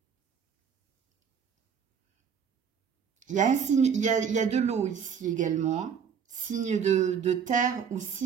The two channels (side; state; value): left; quieter; 7.2 dB